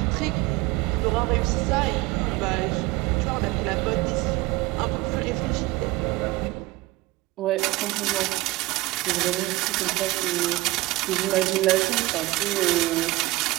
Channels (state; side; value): quieter; left; 19.8 dB